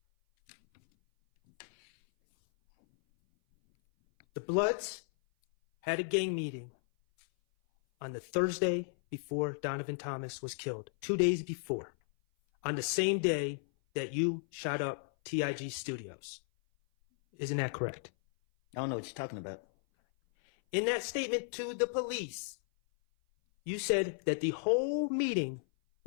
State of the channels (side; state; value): right; silent; 55 dB below the other